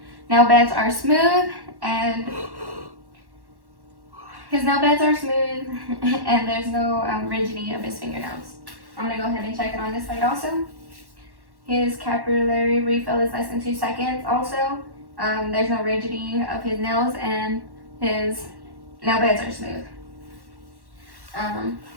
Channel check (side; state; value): left; late; 1.1 ms